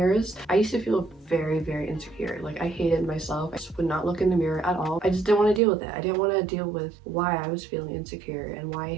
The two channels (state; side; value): drops out; left; at 5.6 s